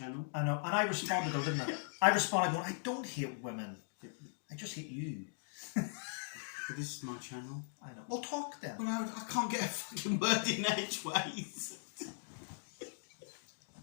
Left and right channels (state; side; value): silent; right; digital silence